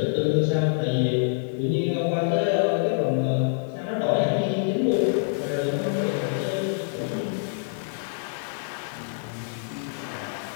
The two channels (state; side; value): silent; right; digital silence